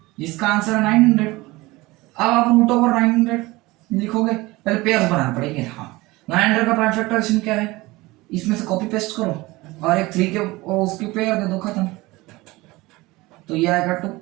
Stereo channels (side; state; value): left; quieter; 20.9 dB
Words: जिसका आंसर है 900। अब आप रूट ओवर 900 लिखोगे, पहले पेयर्स बनाना पड़ेंगे। हाँ, 900 का प्राइम फैक्टराइजेशन क्या है, इसमें से कॉपी पेस्ट करो, और एक 3 के उसकी पेयर दे दो, खत्म। तो ये आएगा टुक